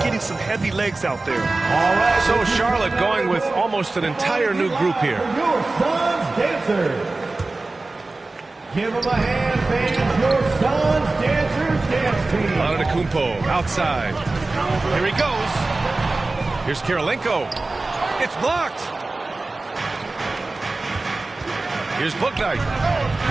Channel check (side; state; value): left; quieter; 3.3 dB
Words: getting some heavy legs out there. All right. So Charlotte going with almost an entire new group here. Your son's dancers. Give them a hand, fans. Your son's dancers dance team. Antetokounmpo outside. Here he goes. Here's Kirilenko. It's blocked. Here's Bouknight.